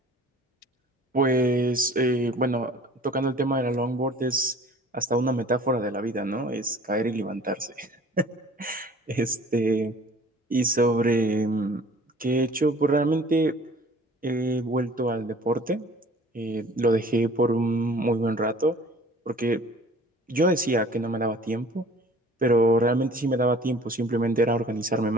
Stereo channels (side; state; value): both; normal; correlation 0.49